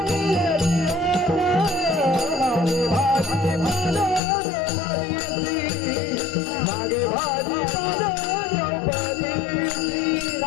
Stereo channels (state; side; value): drops out; right; at 4.2 s